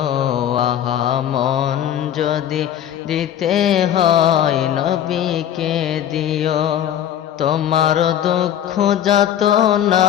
আহা মন যদি দিতে হয় নবীকে দিও। তোমার দুঃখ যাতনা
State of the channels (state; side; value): quieter; right; 10.5 dB